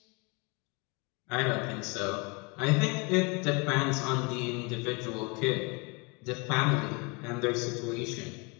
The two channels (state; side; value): quieter; right; 29.8 dB